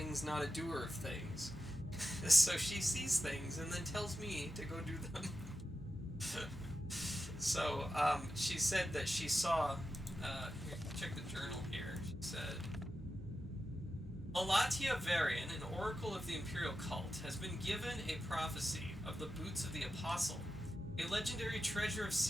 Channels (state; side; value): normal; both; correlation 0.91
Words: not a doer of things. So she sees things and then tells me to go do them. So she said that she saw. Here, check the journal here. She said, Alatia Varian, an oracle of the Imperial cult, has been given a prophecy of the boots of the Apostle, a legendary treasure of